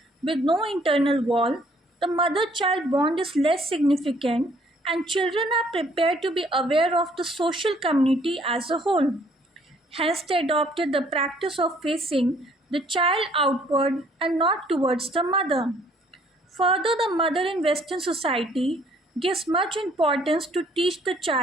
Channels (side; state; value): both; normal; correlation 0.62